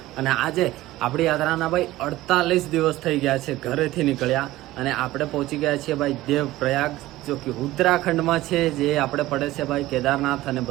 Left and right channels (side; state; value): left; quieter; 16.8 dB